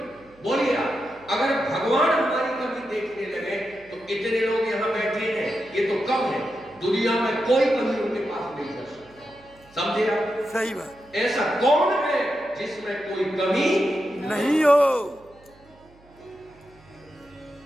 बोलिए आप। अगर भगवान हमारी कमी देखने लगे तो इतने लोग यहां बैठे हैं, ये तो कम है। दुनिया में कोई कमी उनके पास नहीं कर सकता। समझे आप? सही बात। ऐसा कौन है जिसमें कोई कमी नहीं हो?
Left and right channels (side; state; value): right; noise; hum, 28 dB below the sound